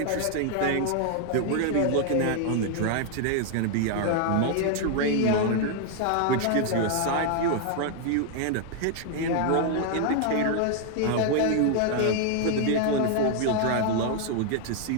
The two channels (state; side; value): different; both; correlation 0.00